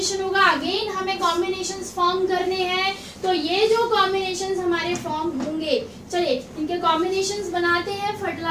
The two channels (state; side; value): identical; both; correlation 1.00